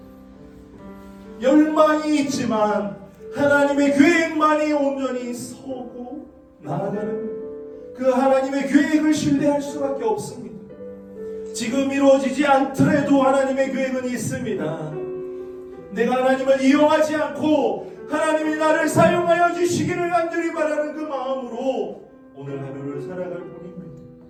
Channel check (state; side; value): identical; both; correlation 1.00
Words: 열망이 있지만 하나님의 계획만이 온전히 서고 나아가는 거예요. 그 하나님의 계획을 신뢰할 수밖에 없습니다. 지금 이루어지지 않더라도 하나님의 계획은 있습니다. 내가 하나님을 이용하지 않고 하나님이 나를 사용하여 주시기를 간절히 바라는 그 마음으로 오늘 하루를 살아갈 뿐입니다.